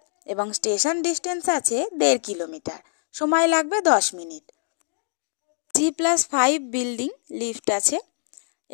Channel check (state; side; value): silent; right; 62 dB below the other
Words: এবং স্টেশন ডিস্টেন্স আছে 1.5 কিলোমিটার, সময় লাগবে 10 মিনিট। G+5 বিল্ডিং, লিফট আছে।